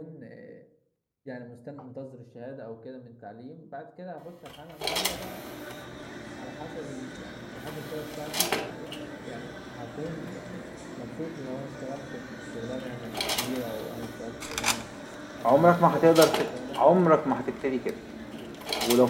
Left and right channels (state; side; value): identical; both; correlation 1.00